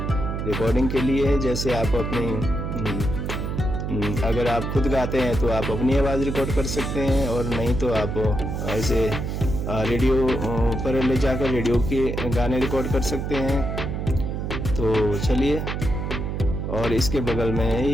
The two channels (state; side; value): noise; right; hum, 3 dB below the sound